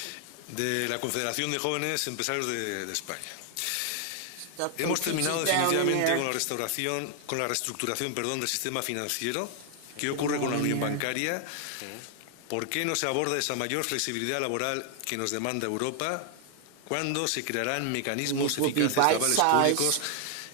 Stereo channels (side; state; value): both; different; correlation 0.00